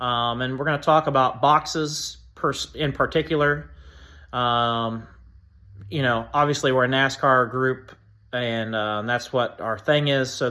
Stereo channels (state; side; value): identical; both; correlation 1.00